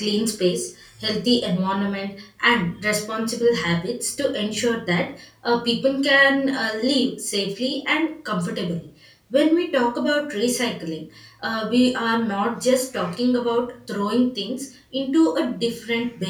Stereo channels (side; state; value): both; identical; correlation 1.00